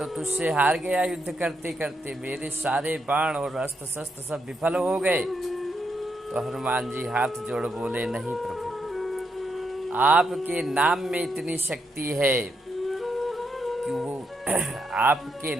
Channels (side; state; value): both; normal; correlation 0.80